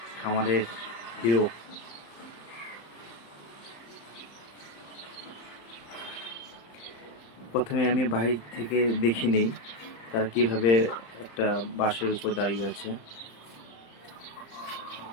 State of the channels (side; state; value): right; late; 35 ms